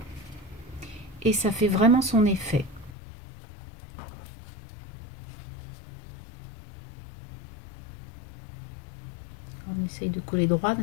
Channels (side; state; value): right; drops out; at 3.0 s